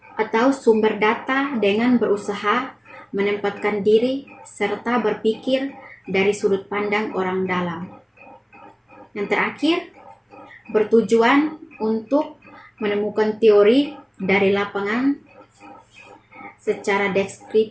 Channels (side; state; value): both; identical; correlation 1.00